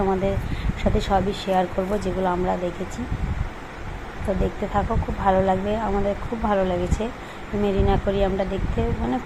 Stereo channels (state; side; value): identical; both; correlation 1.00